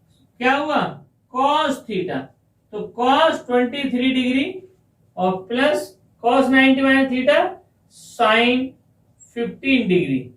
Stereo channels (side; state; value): both; identical; correlation 1.00